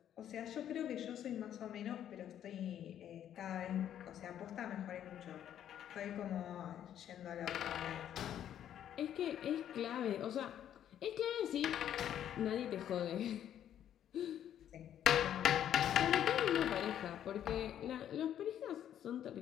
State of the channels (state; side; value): quieter; right; 10.4 dB